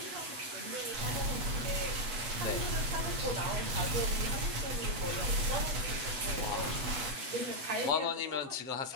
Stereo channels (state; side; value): late; left; 7.9 ms